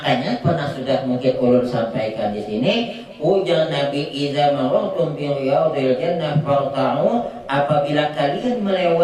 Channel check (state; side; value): identical; both; correlation 1.00